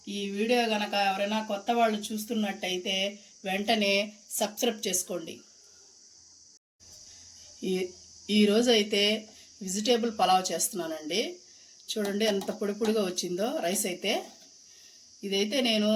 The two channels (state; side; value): identical; both; correlation 1.00